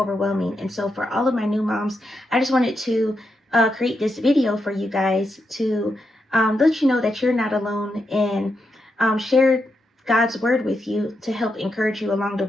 And so for all of my new moms, I just wanted to create this video for you guys to let you know that you're not alone, and share God's word with you to help encourage you along the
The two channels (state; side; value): normal; both; correlation 0.84